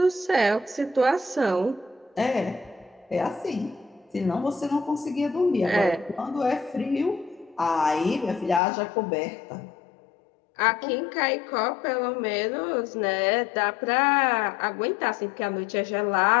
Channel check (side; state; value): right; drops out; at 8.6 s